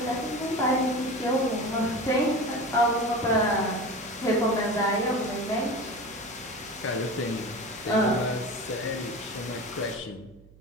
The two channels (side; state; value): right; noise; hum, 24 dB below the sound